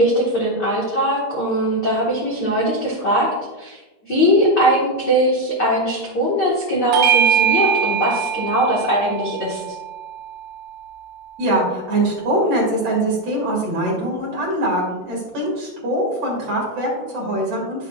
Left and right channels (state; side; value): normal; both; correlation 0.07